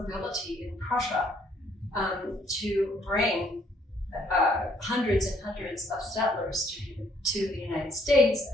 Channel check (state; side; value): normal; both; correlation 0.66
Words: in Prussia to bring hundreds and hundreds of settlers to the United States